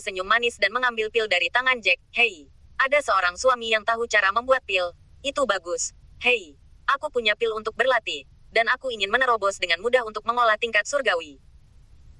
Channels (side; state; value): both; identical; correlation 1.00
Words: manis dan mengambil pil dari tangan Jack. Hei, ada seorang suami yang tahu cara membuat pil. Itu bagus. Hei, aku punya pil untuk berlatih. Dan aku ingin menerobos dengan mudah untuk mengolah tingkat surgawi.